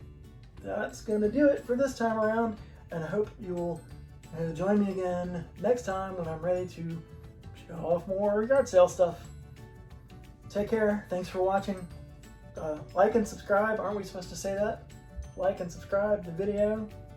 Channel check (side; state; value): both; identical; correlation 1.00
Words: that's going to do it for this time around, and I hope you'll join me again next time when I'm ready to show off more yard sale stuff. Take care. Thanks for watching. Like and subscribe. Aren't we supposed to say that? Like and subscribe to the video.